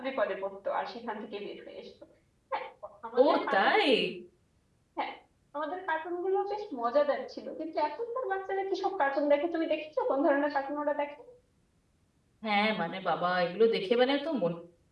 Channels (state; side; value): identical; both; correlation 1.00